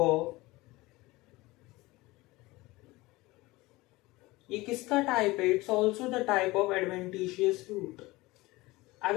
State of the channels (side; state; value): right; quieter; 20.7 dB